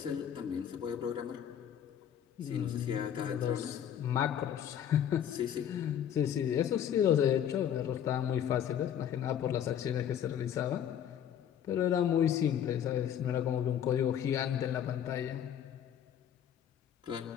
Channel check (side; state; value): right; quieter; 9.5 dB